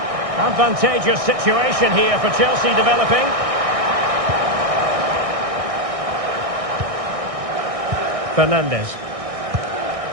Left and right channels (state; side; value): late; left; 1.6 ms